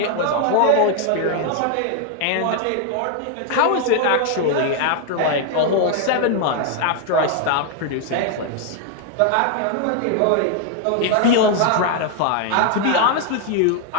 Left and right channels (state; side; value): different; both; correlation 0.00